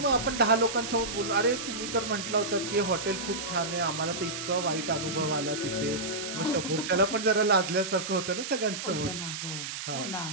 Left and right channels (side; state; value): right; noise; hiss, 6 dB below the sound